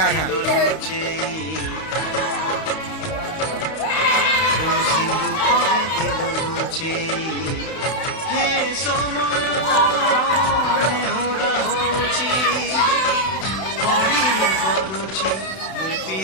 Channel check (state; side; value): late; right; 31 ms